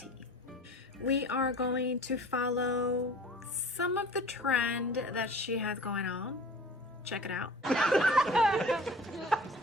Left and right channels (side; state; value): both; normal; correlation 0.43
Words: We are going to follow some of the trend that she has going on. Check it out.